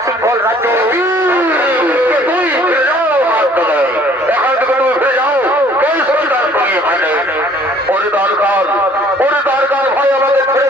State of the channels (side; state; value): both; normal; correlation 0.56